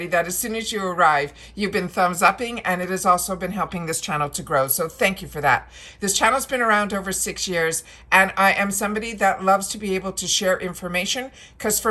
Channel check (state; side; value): identical; both; correlation 1.00